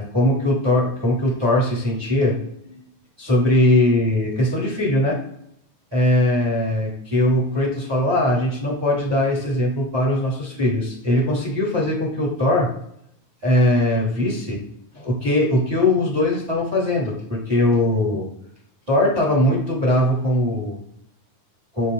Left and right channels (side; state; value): left; late; 9.4 ms